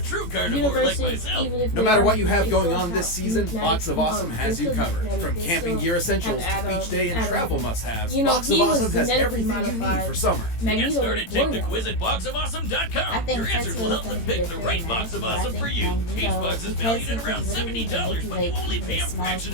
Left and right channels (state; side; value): late; right; 18 ms